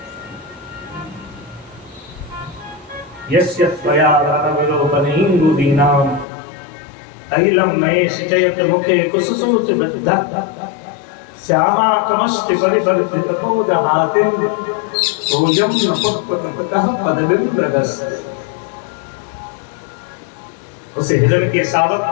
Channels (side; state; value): right; drops out; at 6.2 s